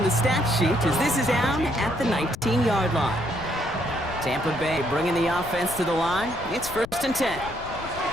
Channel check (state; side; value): noise; left; rumble, 14 dB below the sound